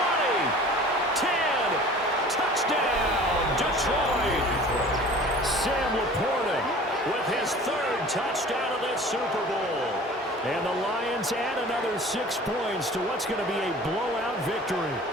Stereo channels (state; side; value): normal; both; correlation 0.44